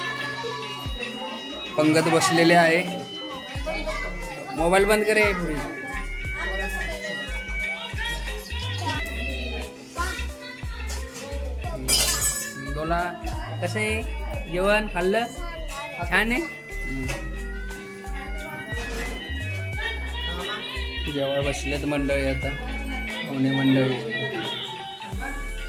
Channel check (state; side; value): identical; both; correlation 1.00